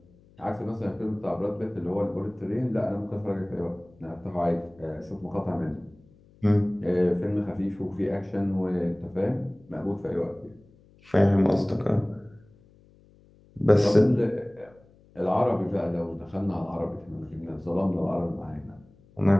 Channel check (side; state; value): left; noise; hum, 28 dB below the sound